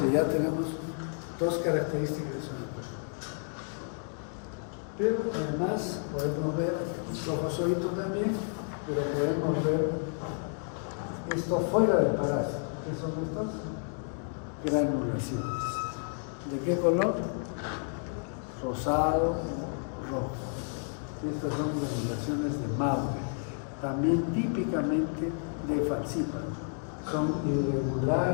ya tenemos dos características de salud. Pero además podemos ver trofozoito también, pero podemos ver esto fuera del parásito. ¿Qué son estas? Granulaciones. ¿De qué color? Rosado o rojo. Estas son granulaciones de Maury, también típicamente de falciparum. Son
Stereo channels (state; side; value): silent; right; 55 dB below the other